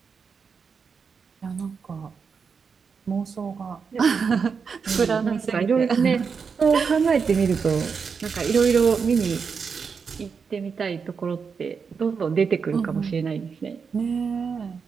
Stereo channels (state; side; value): quieter; left; 5.8 dB